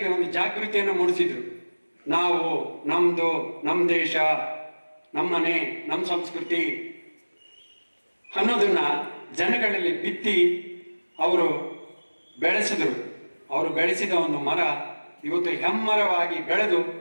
ಒಂದು ಜಾಗೃತಿಯನ್ನು ಮೂಡಿಸಿದ್ರು. ನಾವು ನಮ್ಮ ದೇಶ, ನಮ್ಮನೆ, ನಮ್ಮ ಸಂಸ್ಕೃತಿ ಅನ್ನೋದನ್ನ ಜನಗಳಲ್ಲಿ ಬಿತ್ತಿ ಅವರು ಬೆಳೆಸಿದ್ರು. ಅವರು ಬೆಳೆಸಿದ ಒಂದು ಮರ ಇವತ್ತು ಹೆಮ್ಮರವಾಗಿ ಬೆಳೆದು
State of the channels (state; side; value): inverted; both; correlation -1.00